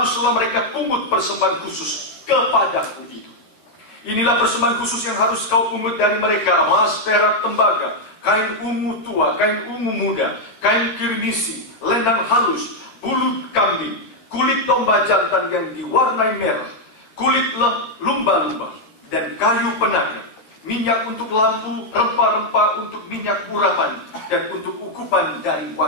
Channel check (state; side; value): late; right; 14 ms